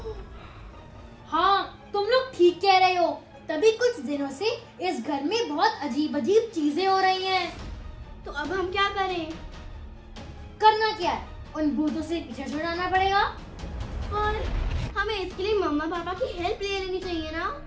हाँ, तुम लोग ठीक कह रहे हो। तभी कुछ दिनों से इस घर में बहुत अजीब अजीब चीजें हो रही हैं। तो अब हम क्या करें? करना क्या है? उन भूतों से पीछे छुड़ाना पड़ेगा। और हमें इसके लिए मम्मा पापा की हेल्प ले लेनी चाहिए ना?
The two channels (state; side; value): identical; both; correlation 1.00